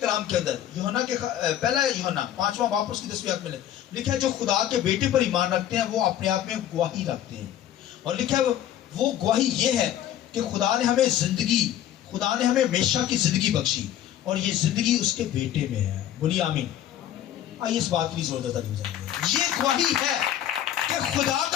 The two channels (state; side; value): quieter; right; 11.4 dB